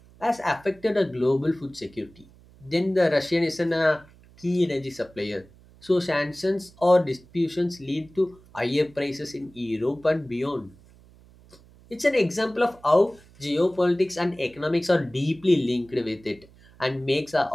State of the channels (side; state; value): right; noise; hum, 26 dB below the sound